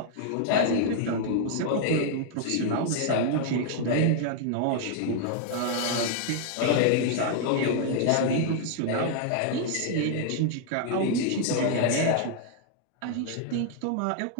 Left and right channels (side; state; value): both; different; correlation 0.00